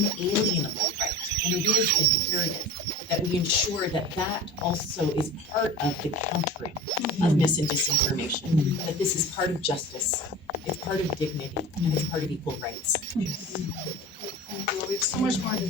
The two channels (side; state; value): both; normal; correlation 0.36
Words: inalienable right. And it is imperative that we ensure that that also is part of the countering of mis and disinformation, that this is part of justice, it's part of dignity, and it's part of equal rights. Thank you. We have so much more to